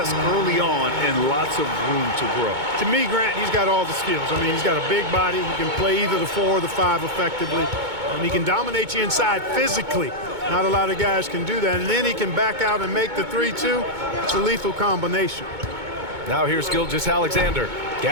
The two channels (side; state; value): left; late; 2.2 ms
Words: early on and lots of room to grow. To me, Grant, he's got all the skills. I mean, he's got a big body. He can play either the 4 or the 5 effectively. And he can dominate you inside physically. Not a lot of guys can do that. And then he can back out and make the 3 too. It's a lethal combination. Now here's Gilgeous-Alexander.